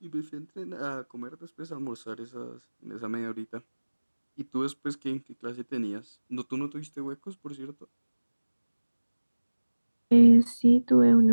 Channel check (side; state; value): both; inverted; correlation -1.00